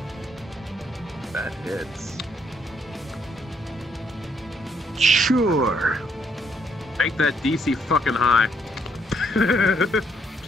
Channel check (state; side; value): normal; both; correlation 0.72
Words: That hits. Sure. Make that DC fucking high.